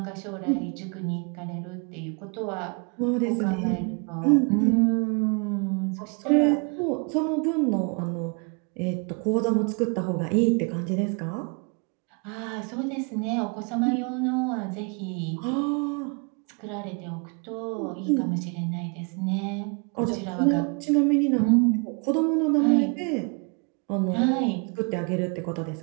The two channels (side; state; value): left; quieter; 34.9 dB